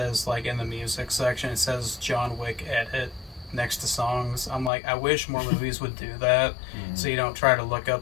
like, in the music section, it says John Wick edit next to songs. I'm like, I wish more movies would do that, so you don't try to look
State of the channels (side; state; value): right; drops out; at 4.7 s